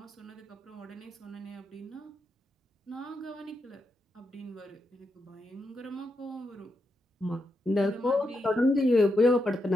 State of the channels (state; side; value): normal; both; correlation 0.84